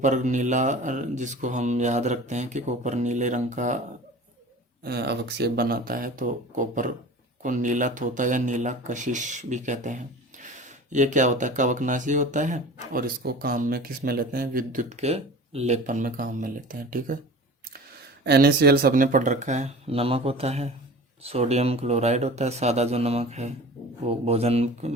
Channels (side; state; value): both; normal; correlation 0.39